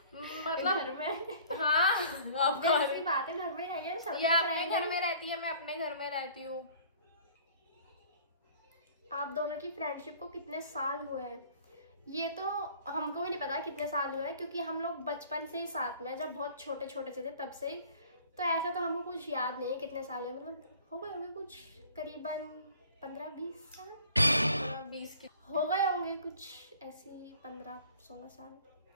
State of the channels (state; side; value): inverted; both; correlation -0.51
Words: मतलब घर में। हाँ, आप ऑब्वियसली बात है, घर में जाइए सब। ये अपने घर में रहती है, मैं अपने घर में रहती हूँ। आप दोनों की फ्रेंडशिप को कितने साल हुए हैं? ये तो हमको भी नहीं पता कितने साल हुए हैं, क्योंकि हम लोग बचपन से ही साथ में, जब बहुत छोटे छोटे से थे तब से ही। तो ऐसा तो हमको कुछ याद नहीं है कितने साल है, मतलब हो गए होंगे कुछ करीबन 15-20 साल। 20 की हो गए होंगे कुछ ऐसी 15-16